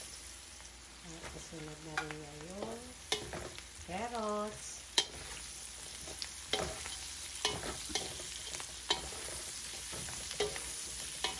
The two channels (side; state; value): both; identical; correlation 1.00